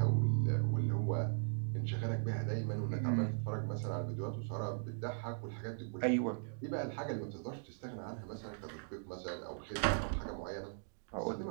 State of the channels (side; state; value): left; silent; digital silence